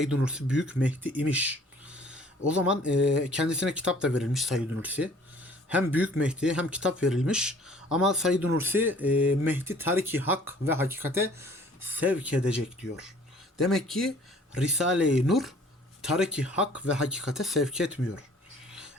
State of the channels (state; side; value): normal; both; correlation 0.54